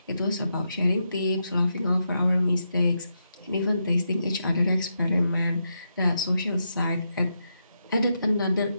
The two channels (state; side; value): inverted; both; correlation -0.84